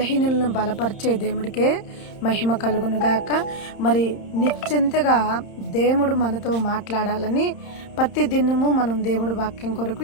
బలపరిచే దేవుడికే మహిమ కలుగునుగాక. మరి నిశ్చింతగా దేవుడు మనతో మాట్లాడాలని ప్రతి దినము మనం దేవుడి వాక్యం కొరకు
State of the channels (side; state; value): right; late; 31 ms